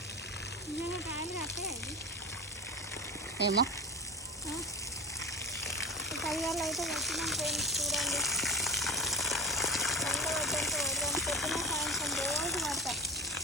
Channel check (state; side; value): normal; both; correlation 0.30